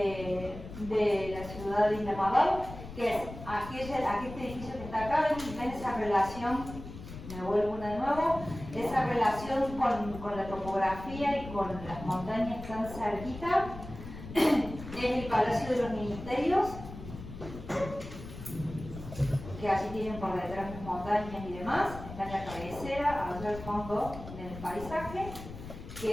la ciudad de Isla Madal, que es este edificio que está acá, ven esa relación, me vuelvo una de nuevo, esa relación con la topografía y con las montañas tan cerquita, es el Palacio de los Ministerios, que allí tienen por detrás las montañas y demás, está en la cabecera, allá al fondo del paisaje,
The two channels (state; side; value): noise; left; rumble, 12 dB below the sound